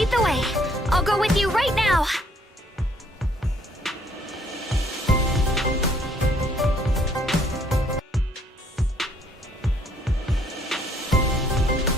the way. I'll go with you right now.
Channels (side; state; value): both; normal; correlation 0.65